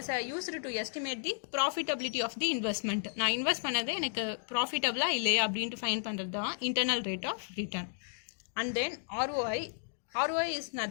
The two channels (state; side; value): silent; right; digital silence